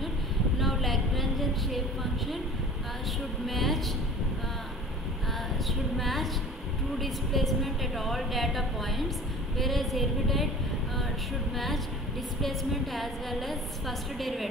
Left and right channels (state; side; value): normal; both; correlation 0.42